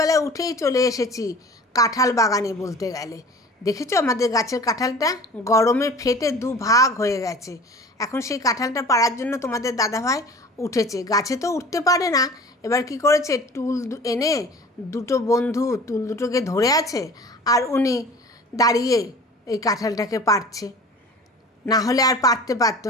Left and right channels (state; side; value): normal; both; correlation 0.43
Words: উঠেই চলে এসেছি কাঁঠাল বাগানে। বলতে গেলে দেখেছো আমাদের গাছের কাঁঠালটা গরমে ফেটে দুভাগ হয়ে গেছে। এখন সেই কাঁঠালটা পাড়ার জন্য তোমাদের দাদাভাই উঠেছে। গাছে তো উঠতে পারে না, এবার কি করেছে, টুল এনে দুটো বন্ধু টুল দুটোকে ধরে আছে, আর উনি দাঁড়িয়ে এই কাঁঠালটাকে পাড়ছে। না হলে আর পারতে পারতো